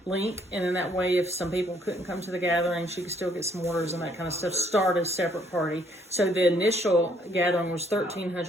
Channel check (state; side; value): normal; both; correlation 0.66